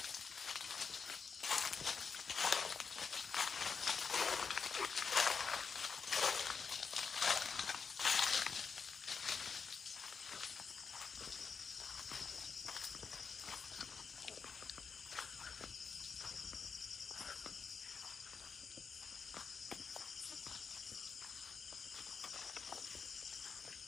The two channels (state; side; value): quieter; right; 5.6 dB